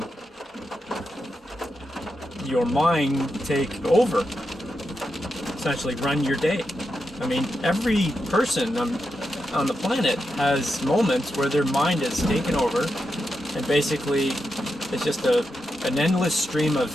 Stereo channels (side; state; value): both; normal; correlation 0.87